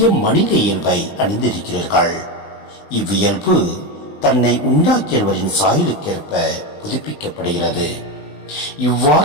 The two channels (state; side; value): late; right; 20 ms